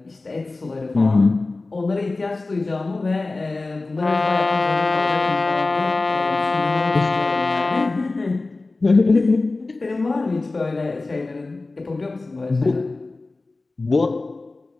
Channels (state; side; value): quieter; right; 3.4 dB